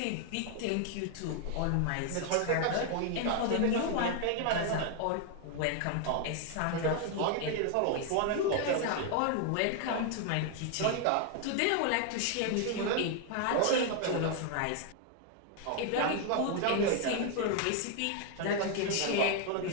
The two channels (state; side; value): different; both; correlation 0.00